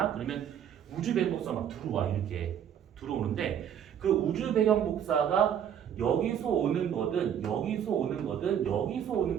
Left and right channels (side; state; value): left; quieter; 9.1 dB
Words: 그러면 우주 배경 복사 막 들어와. 이렇게 들어오는데, 그 우주 배경 복사가 여기서 오는 거든 여기서 오는 거든 여기서 오는